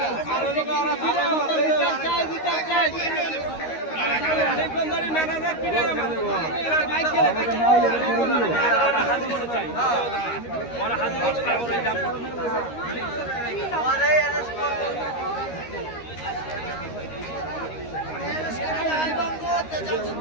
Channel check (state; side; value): late; right; 13 ms